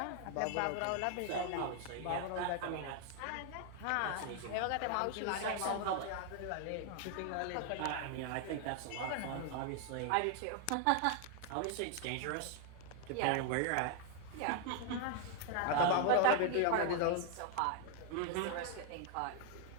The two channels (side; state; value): both; different; correlation 0.00